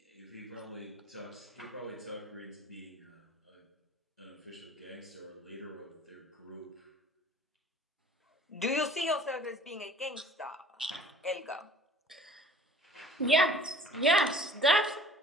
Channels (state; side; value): normal; both; correlation 0.48